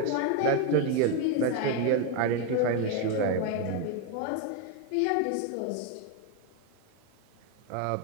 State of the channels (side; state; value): both; different; correlation 0.02